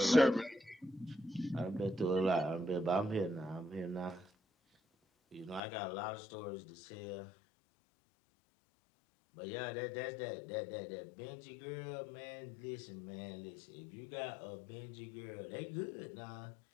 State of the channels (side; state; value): right; drops out; at 5.6 s